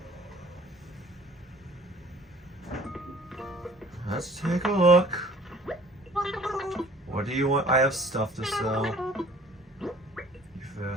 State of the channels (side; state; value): both; normal; correlation 0.53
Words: Let's take a look. What do you want? I have stuff to sell. You